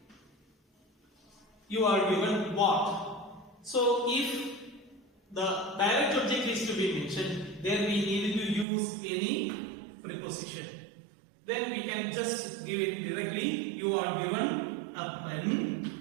You are given what? So if the direct object is to be mentioned, then we need to use any preposition. Then we can just give it directly. You are given a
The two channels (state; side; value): drops out; left; at 8.7 s